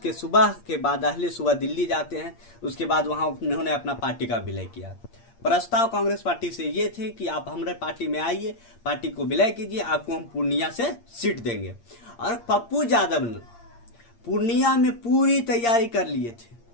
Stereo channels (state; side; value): late; right; 8.6 ms